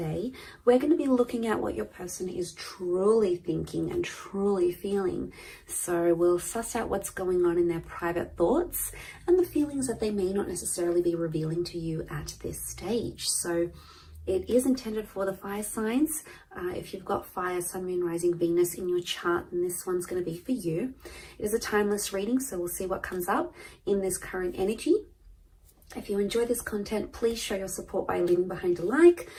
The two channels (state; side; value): identical; both; correlation 1.00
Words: We're going to be looking at what your person is truly thinking and truly feeling. So we'll suss out what's going on in their private thoughts and the feelings that they may not necessarily be revealing to you at this stage. So it is intended for the fire signs. If you've got fire, sun, moon, rising, Venus in your chart, then this one's going to be for you. It is a timeless reading, so we'll see what comes up in this current energy. If you enjoy this content, please show your support by leaving behind a like.